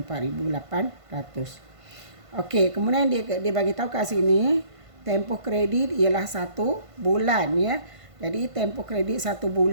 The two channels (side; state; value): left; late; 1.5 ms